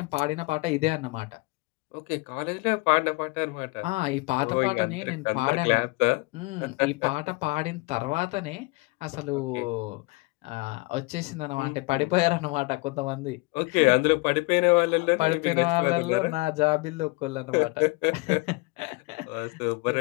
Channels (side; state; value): right; quieter; 25.8 dB